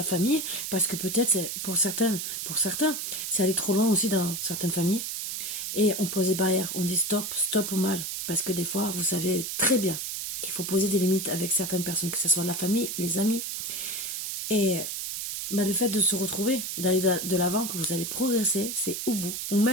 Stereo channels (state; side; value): noise; right; hiss, 4 dB below the sound